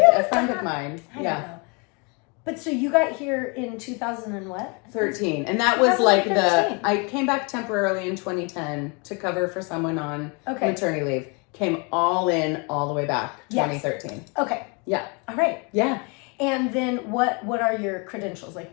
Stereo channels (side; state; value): right; quieter; 32.3 dB